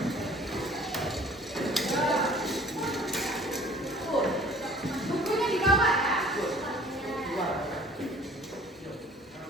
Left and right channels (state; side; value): normal; both; correlation 0.50